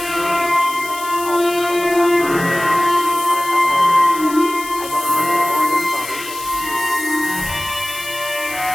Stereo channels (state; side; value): noise; left; hiss, 12 dB below the sound